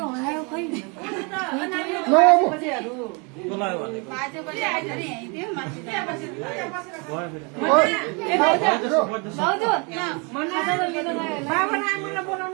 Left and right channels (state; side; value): quieter; left; 32.2 dB